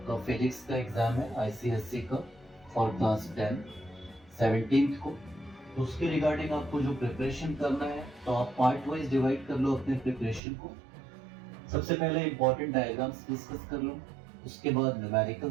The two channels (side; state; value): left; drops out; at 10.4 s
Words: फिजिक्स का एग्जाम है आईसीएससी का फॉर क्लास 10 17 को। तो उसके रिगार्डिंग आपको जो प्रिपरेशन करना है तो आप पार्ट वाइज डिवाइड कर लो अपने प्रिपरेशन को। सबसे पहले इम्पोर्टेंट डायग्राम्स डिस्कस कर लो, उसके बाद